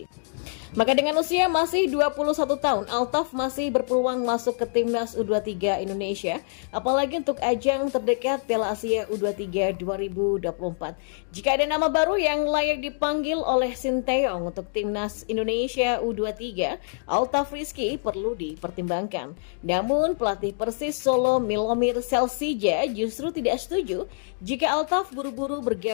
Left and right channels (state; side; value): silent; right; digital silence